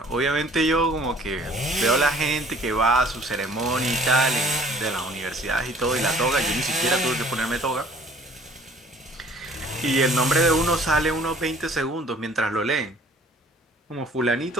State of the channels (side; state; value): both; normal; correlation 0.54